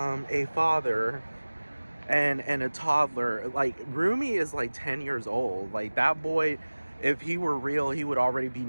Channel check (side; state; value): both; inverted; correlation -1.00